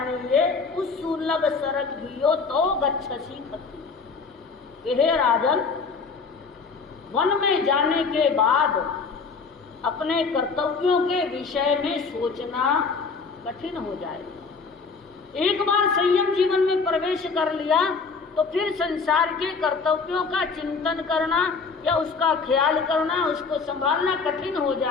उस्सुलभ सरघियो तो गच्छसी खत्ती। कि हे राजन, वन में जाने के बाद अपने कर्तव्यों के विषय में सोचना कठिन हो जाएगा। एक बार संयम जीवन में प्रवेश कर लिया तो फिर संसार के कर्तव्यों का चिंतन करना या उसका ख्याल करना, उसको संभालना कठिन हो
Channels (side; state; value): right; quieter; 4.8 dB